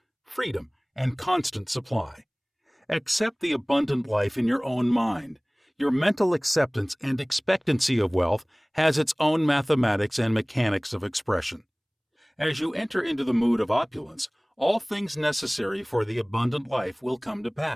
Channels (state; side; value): identical; both; correlation 1.00